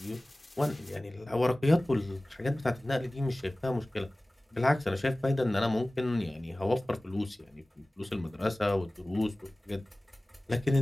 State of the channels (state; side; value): normal; both; correlation 0.98